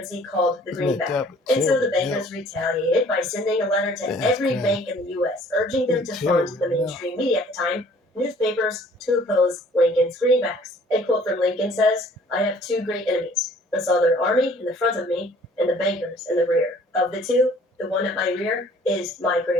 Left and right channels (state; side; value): normal; both; correlation 0.55